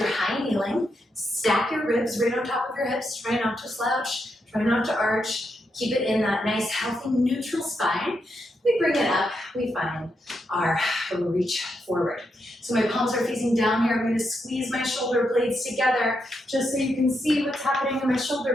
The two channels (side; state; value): both; normal; correlation 0.82